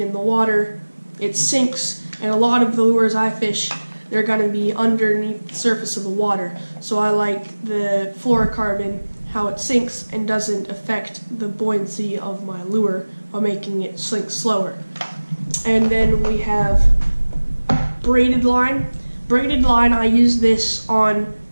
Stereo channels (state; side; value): inverted; both; correlation -1.00